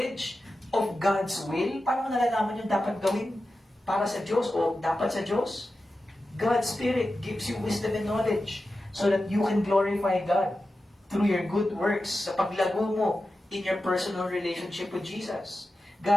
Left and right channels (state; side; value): normal; both; correlation 0.92